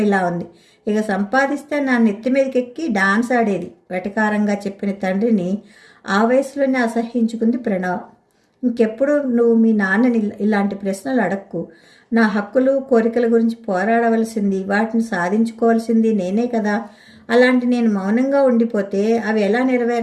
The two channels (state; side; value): identical; both; correlation 1.00